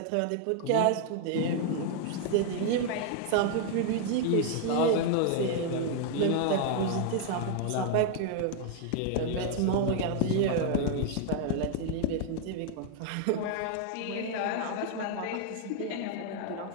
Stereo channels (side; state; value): both; different; correlation 0.00